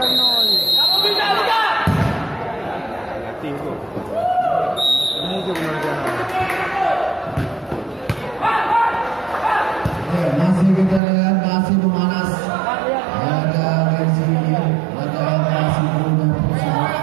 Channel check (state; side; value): drops out; left; at 11.0 s